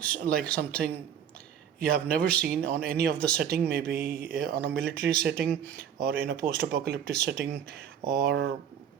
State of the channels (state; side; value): quieter; left; 8.8 dB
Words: like something you have never seen on any of the setting, maybe on a military setting or in a post-apocalyptic setting or